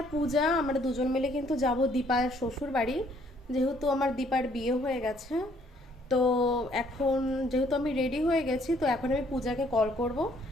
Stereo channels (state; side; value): normal; both; correlation 0.64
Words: পূজা আমরা দুজন মিলে কিন্তু যাব দীপার শ্বশুর বাড়ি, যেহেতু আমার দীপার বিয়ে হয়ে গেছে। তো এখন যেহেতু আমি রেডি হয়ে গেছি, তো এখন আমি পূজাকে কল করব